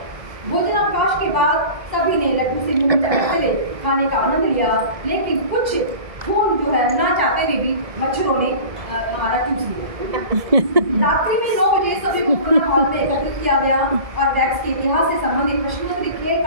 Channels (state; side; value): late; left; 1.7 ms